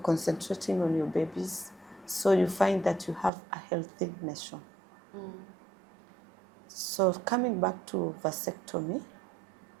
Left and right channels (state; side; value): drops out; left; at 3.3 s